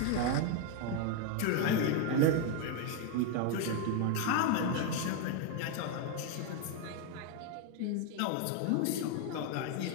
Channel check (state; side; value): different; both; correlation 0.01